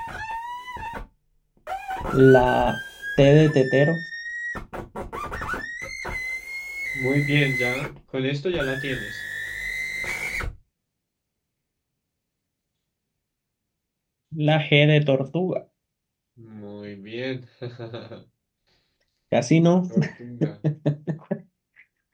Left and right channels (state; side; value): identical; both; correlation 1.00